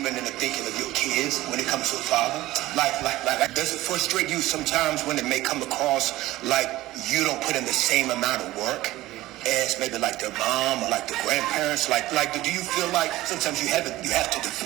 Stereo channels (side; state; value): left; quieter; 16.9 dB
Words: in the thinking of your kids when it comes to a father? Like, does it frustrate you sometimes when it may come across like you don't put in the same amount of work as maybe like their mom or like the grandparents? Like, do you feel like sometimes you have to